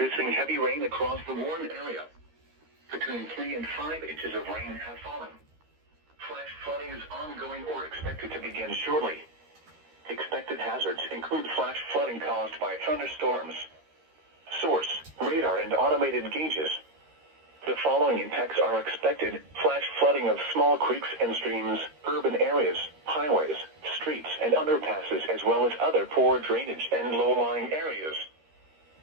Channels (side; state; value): left; late; 13 ms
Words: heavy rain across the Warren area. Between 3 and 5 inches of rain have fallen. Flash flooding is ongoing or expected to begin shortly. Expected hazards include flash flooding caused by thunderstorms. Source: radar and automated gauges. The following impacts are expected: flash flooding of small creeks and streams, urban areas, highways, streets, and underpasses, as well as other poor drainage and low-lying areas.